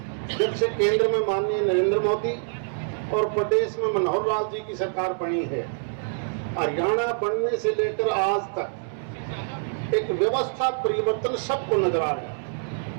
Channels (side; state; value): left; silent; digital silence